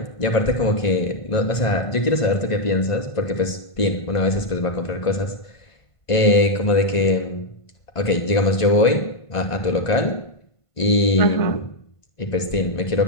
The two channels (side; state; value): right; late; 1.5 ms